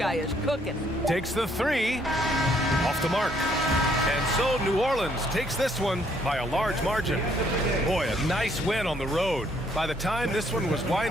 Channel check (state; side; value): normal; both; correlation 0.68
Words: is cooking. Takes the three. Off the mark. And so New Orleans takes this one by a large margin. Boy, a nice win on the road. By the time this one was